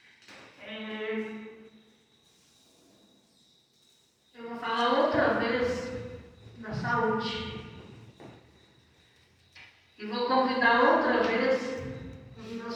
Eu vou falar outra vez da saúde. E vou convidar outra vez os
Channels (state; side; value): identical; both; correlation 1.00